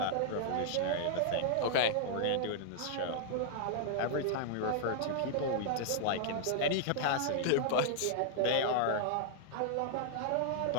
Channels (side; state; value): both; different; correlation -0.01